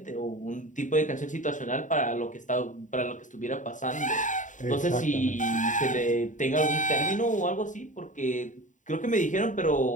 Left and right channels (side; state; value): right; late; 0.36 ms